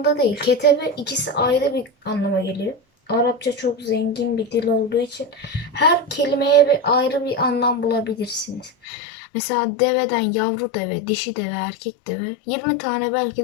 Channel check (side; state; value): right; drops out; at 8.7 s